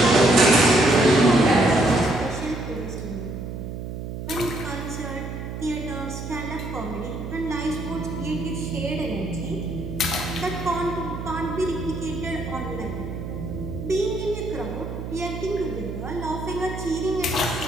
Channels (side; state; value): right; noise; hum, 7 dB below the sound